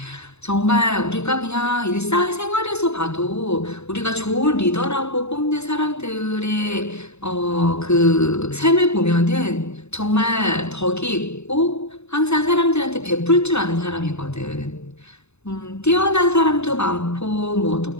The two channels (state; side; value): late; right; 0.81 ms